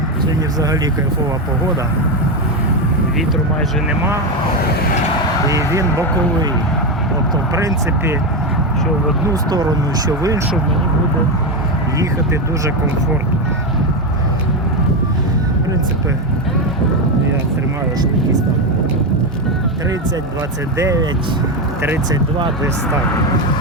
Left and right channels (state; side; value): normal; both; correlation 0.11